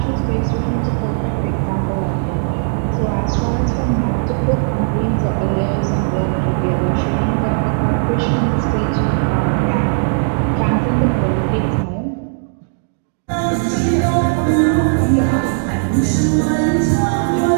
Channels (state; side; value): silent; left; digital silence